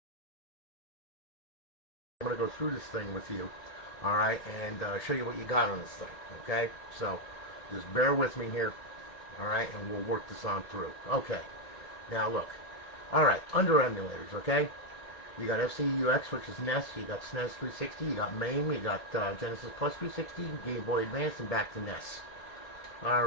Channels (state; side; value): late; right; 1.7 ms